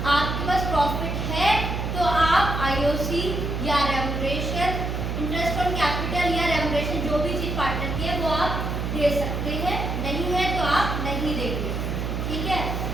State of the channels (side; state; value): right; noise; hum, 2 dB below the sound